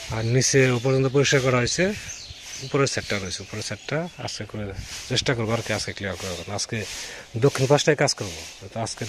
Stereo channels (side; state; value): both; identical; correlation 1.00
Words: আর নিচে পর্যন্ত পরিষ্কার করা হয়েছে, উপরের সেটটা রয়েছে, উপরের সেটটা আজকে করে চেষ্টা করবো আর কি, আজকে ক্লিয়ার করে দেবো। আজকে দক্ষিণ পাশটায় কাজ করবো, তো আজকে